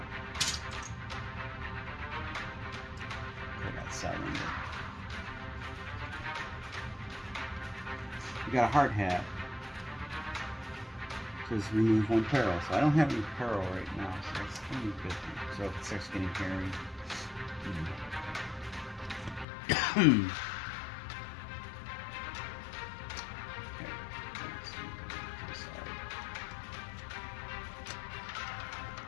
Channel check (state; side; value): drops out; right; at 19.5 s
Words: I got 7. We got a hard hat. It says remove 1 peril. So I don't have any peril right now. So that's only a good thing. So if it starts getting hairy.